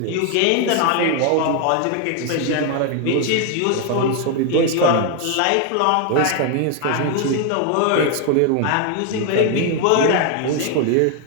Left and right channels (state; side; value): different; both; correlation 0.00